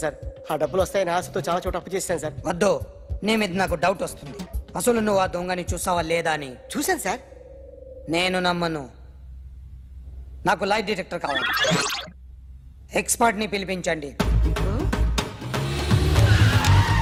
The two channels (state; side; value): identical; both; correlation 1.00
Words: సార్. ఆ డబ్బులు వస్తాయని ఆశతో చాలా చోట అప్పు చేశాను సార్. వద్దు, నీ మీద నాకు డౌట్ వస్తుంది. అసలు నువ్వు ఆ దొంగని చూసావా లేదా అని. చూశాను సార్. నేను నమ్మను. నాకు లైట్ డిటెక్టర్ కావాలి. ఎక్స్పర్ట్ ని పిలిపించండి.